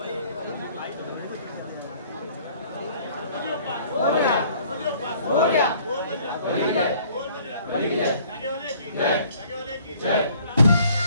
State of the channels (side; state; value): both; inverted; correlation -0.57